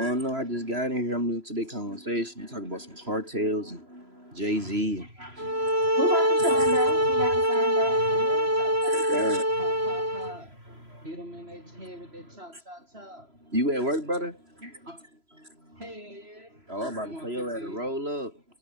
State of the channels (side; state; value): left; late; 3.0 ms